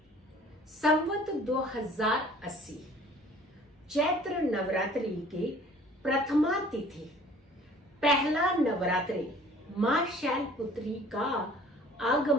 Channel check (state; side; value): normal; both; correlation 0.51